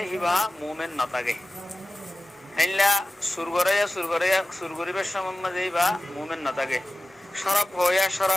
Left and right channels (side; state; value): both; normal; correlation 0.94